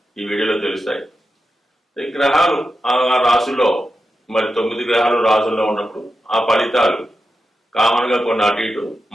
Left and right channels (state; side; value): normal; both; correlation 0.89